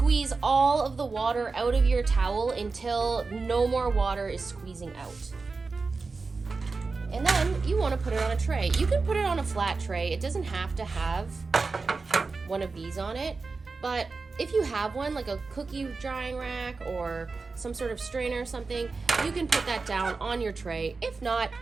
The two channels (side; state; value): left; quieter; 4.2 dB